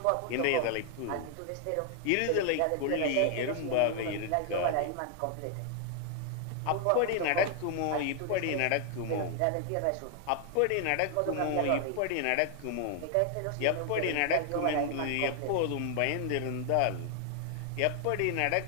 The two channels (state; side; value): different; both; correlation 0.00